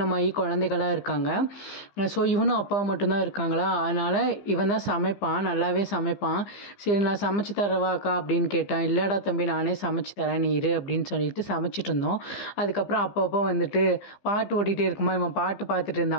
குழந்தைகளாக இருக்காங்க. ஸோ இவனும் அப்பாவும் மட்டும்தான் இருக்காங்களா, அதனால் இவன் தான் சமைப்பான், நல்லாவே சமைப்பான். சரி நான் சமைச்சு தரவா அக்கா அப்படின்னு கேட்டான். இல்லைடா தம்பி நானே சமைச்சு தரேன் நீ இரு அப்படின்னு சொல்லிட்டு சமைச்சிட்டு இருந்தோம். அதுக்கப்புறம் அப்பப்போ வந்துட்டு பாட்டு ஓடிட்டே இருக்குமா, இவன் பாட்டு பார்த்துட்டு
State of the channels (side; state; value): right; late; 15 ms